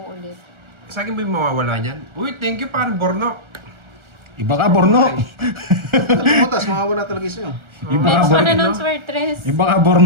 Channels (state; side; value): late; left; 1.3 ms